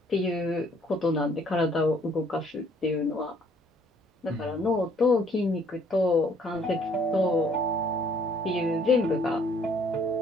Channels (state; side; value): normal; both; correlation 0.62